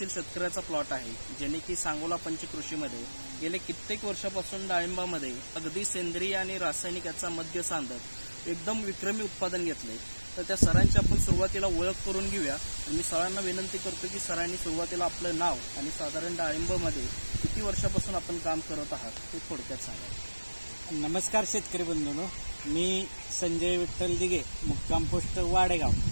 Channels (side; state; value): both; inverted; correlation -1.00